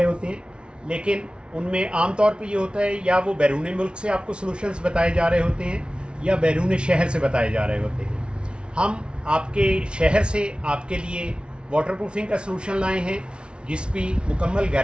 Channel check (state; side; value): late; left; 0.057 ms